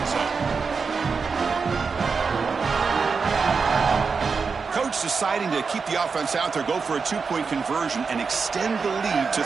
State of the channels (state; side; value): quieter; left; 5.1 dB